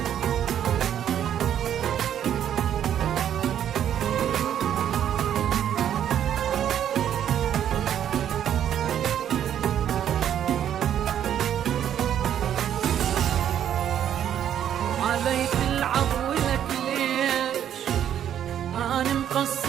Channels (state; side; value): quieter; left; 10.0 dB